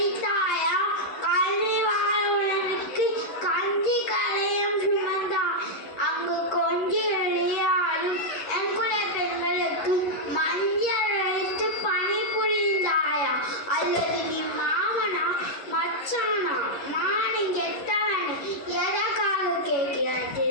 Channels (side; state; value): right; late; 11 ms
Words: கல்வி வாழ்வனுக்கு கஞ்சி கலையும் சுமந்தா அங்கு கொஞ்சி விளையாடும் எங்குலை பெண்களுக்கு மஞ்சள் அழைத்து பணி புரிந்தாயா அல்லது நீ மாமனா மச்சானா மானு கெட்டவன் எதற்காக